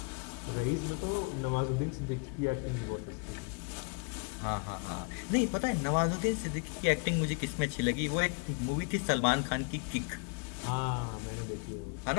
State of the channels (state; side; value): quieter; right; 34.7 dB